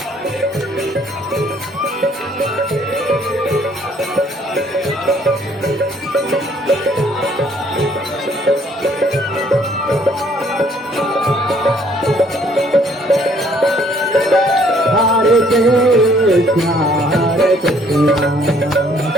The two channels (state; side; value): normal; both; correlation 0.62